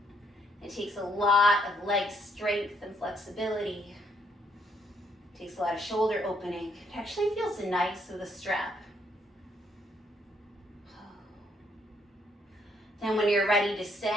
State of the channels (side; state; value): both; normal; correlation 0.71